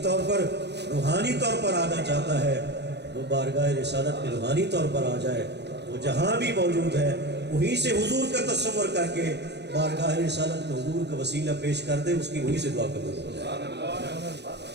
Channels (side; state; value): left; late; 0.50 ms